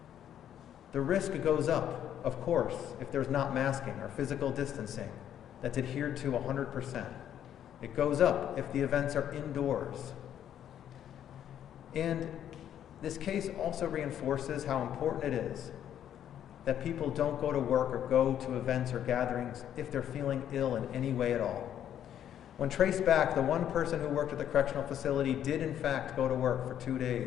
The risk goes up, of course, if there's not masking or physical distancing that's adhered to 100%. It goes up if the events are indoors. And this case also reinforces how important it is that people don't go to work or go to events or gatherings if they're feeling ill in any way at all. When traced back, the one person who worked at the correctional facility did in fact go to work for 2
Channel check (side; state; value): right; quieter; 10.2 dB